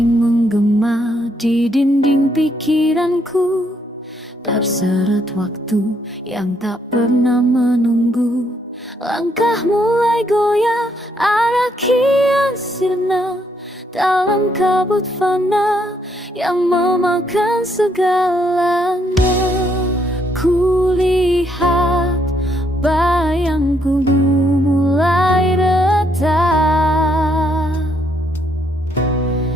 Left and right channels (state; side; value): normal; both; correlation 0.73